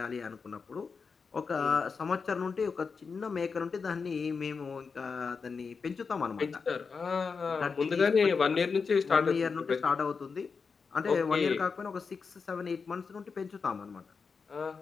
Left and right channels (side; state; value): right; quieter; 5.2 dB